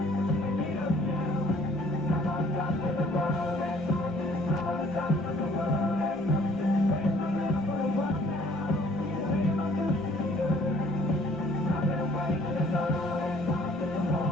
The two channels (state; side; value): normal; both; correlation 0.58